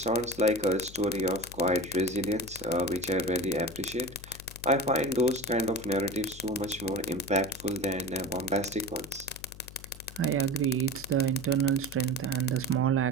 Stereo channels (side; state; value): left; noise; hum, 17 dB below the sound